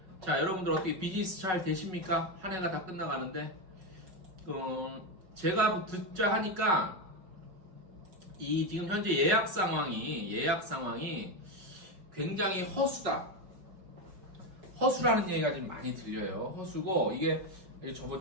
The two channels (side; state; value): left; late; 5.4 ms